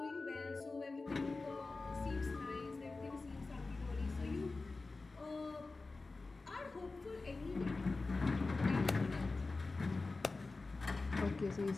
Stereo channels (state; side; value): quieter; right; 3.6 dB